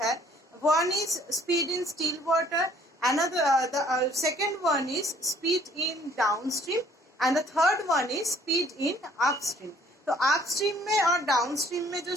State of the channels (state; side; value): normal; both; correlation 0.59